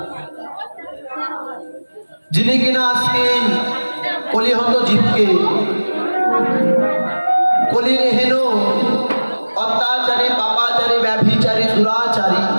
যিনি কিনা আজকে কলিহত জীবকে কলির হেন অত্যাচারী, পাপাচারী, ব্যভিচারী, দুরাচারী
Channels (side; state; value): both; inverted; correlation -1.00